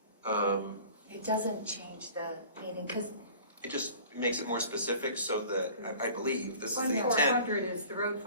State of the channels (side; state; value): both; inverted; correlation -0.45